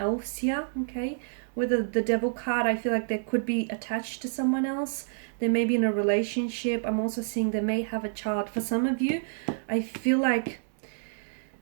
here, okay? With the Devil card, I feel like they could be attached to someone else. They may be in a relationship. I'm also seeing they may have a child. For some of you, I feel like,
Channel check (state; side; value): silent; left; digital silence